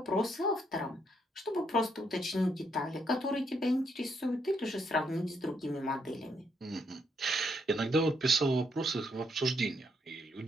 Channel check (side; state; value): both; normal; correlation 0.75